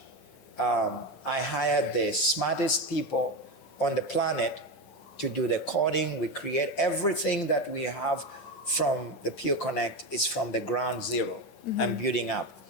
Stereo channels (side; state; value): right; late; 7.1 ms